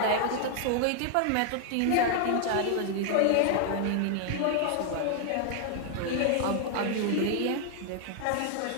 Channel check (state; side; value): different; both; correlation 0.00